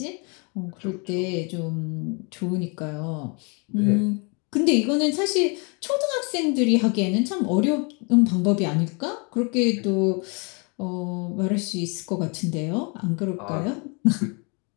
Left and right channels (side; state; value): right; quieter; 33.3 dB